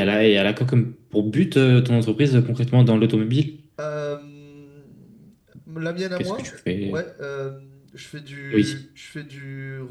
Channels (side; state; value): both; identical; correlation 1.00